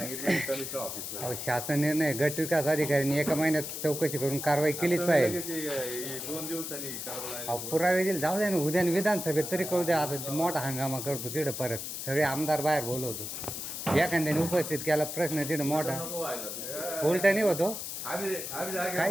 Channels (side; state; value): left; noise; hiss, 6 dB below the sound